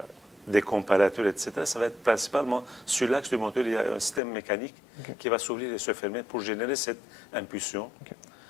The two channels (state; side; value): drops out; right; at 4.2 s